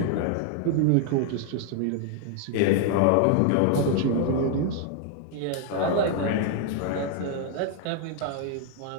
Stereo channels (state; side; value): different; both; correlation 0.00